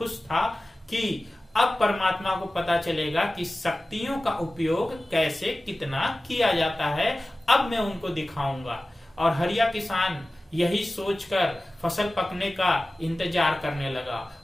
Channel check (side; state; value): both; normal; correlation 0.96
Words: था कि अब परमात्मा को पता चलेगा कि शक्तियों का उपयोग कैसे कितना किया जाता है, अब मैं उनको दिखाऊंगा। और हरिया किसान यही सोचकर फसल पकने का इंतजार करने लगा